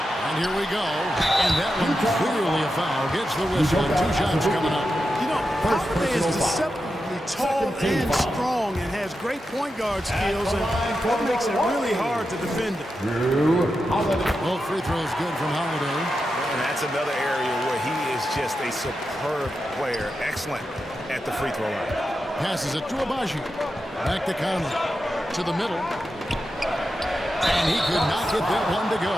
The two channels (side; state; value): both; normal; correlation 0.89